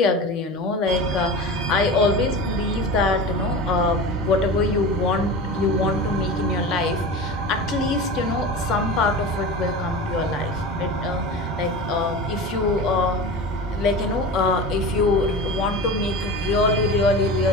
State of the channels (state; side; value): normal; both; correlation 0.30